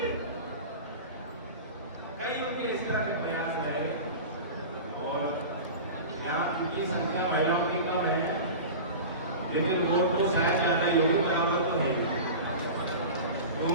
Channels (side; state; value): both; inverted; correlation -0.32